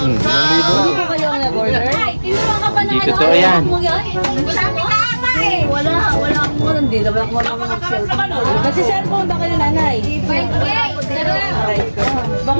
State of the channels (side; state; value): both; inverted; correlation -1.00